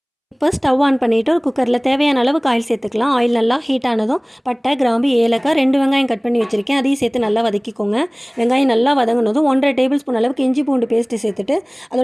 இப்போ ஸ்டவ் ஆன் பண்ணிவிட்டு ஒரு குக்கரில் தேவையான அளவுக்கு ஆயில் சேர்த்துக்கலாம். ஆயில் நல்லா ஹீட் ஆனதும் பட்டை, கிராம்பு, ஏலக்காய், 2 வெங்காயம் கட் பண்ணி வச்சுருக்கேன், அதையும் சேர்த்து நல்லா வதக்கிக்கோங்க. வெங்காயம் நல்லா வதங்கினதும் 1½ டேபிள் ஸ்பூன் அளவுக்கு இஞ்சி பூண்டு பேஸ்ட்டு சேர்த்துட்டு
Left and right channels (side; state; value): both; identical; correlation 1.00